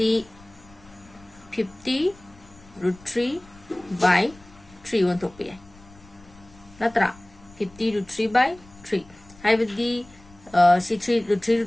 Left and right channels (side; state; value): left; noise; rumble, 24 dB below the sound